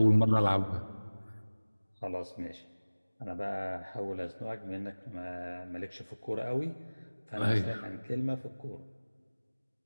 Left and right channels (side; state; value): both; inverted; correlation -1.00